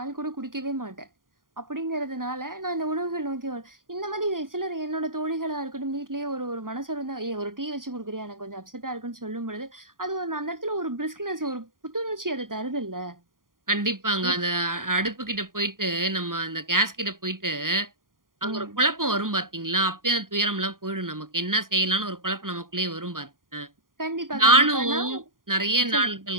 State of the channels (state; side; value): late; left; 0.91 ms